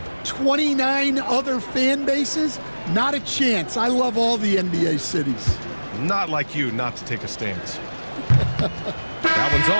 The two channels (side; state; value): both; inverted; correlation -1.00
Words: 29 other fan bases. Not a chance. I love all the NBA cities. Not like you not to take a stance. That one's